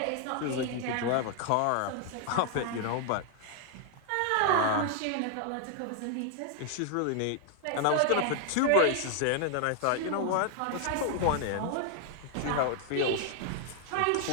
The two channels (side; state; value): both; different; correlation 0.00